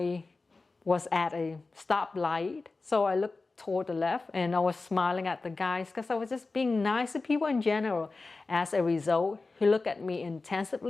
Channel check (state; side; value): quieter; right; 3.7 dB